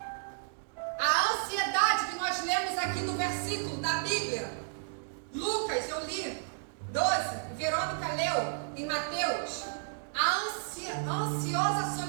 A ansiedade que nós lemos aqui no versículo da Bíblia, Lucas, eu li 12, Verônica leu em Mateus, a ansiosa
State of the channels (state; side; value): silent; left; digital silence